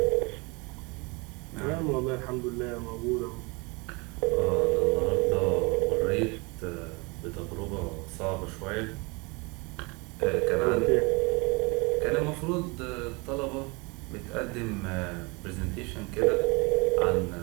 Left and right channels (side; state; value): left; quieter; 28.0 dB